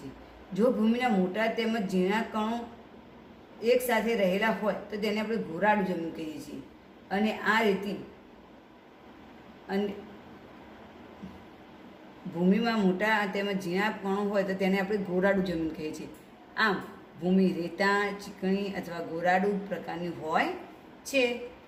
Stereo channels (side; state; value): both; identical; correlation 1.00